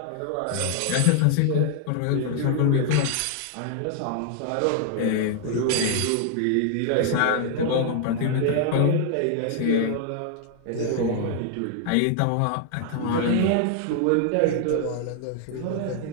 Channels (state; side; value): different; both; correlation 0.00